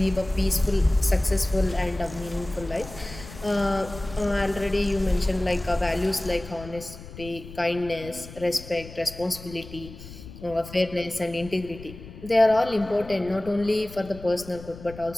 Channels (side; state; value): left; noise; rumble, 15 dB below the sound